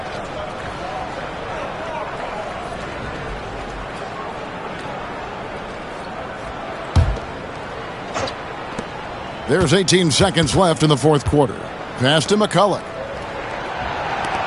There's 18 seconds left in the fourth quarter. Pass to McCulloch.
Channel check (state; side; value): identical; both; correlation 1.00